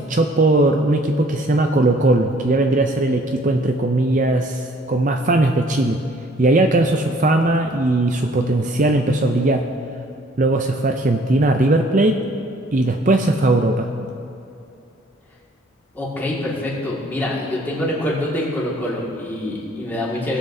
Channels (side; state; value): both; normal; correlation 0.58